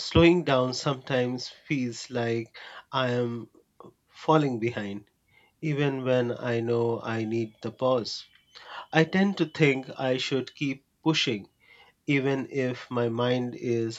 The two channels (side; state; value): both; identical; correlation 1.00